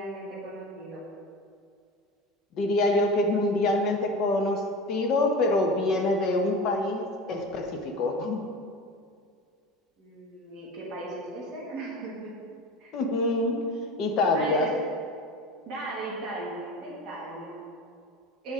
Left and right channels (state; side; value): normal; both; correlation 0.32